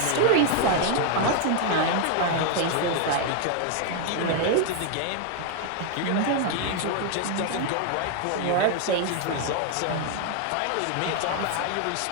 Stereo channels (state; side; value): different; both; correlation 0.00